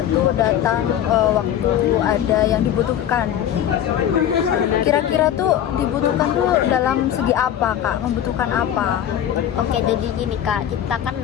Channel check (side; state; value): right; quieter; 10.5 dB